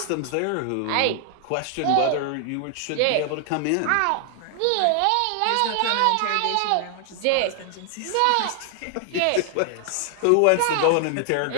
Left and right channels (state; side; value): different; both; correlation 0.00